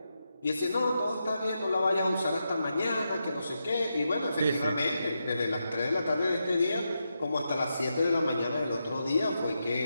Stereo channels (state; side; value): inverted; both; correlation -0.86